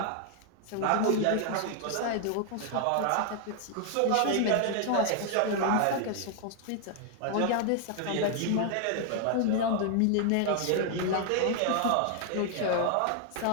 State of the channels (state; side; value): different; both; correlation 0.00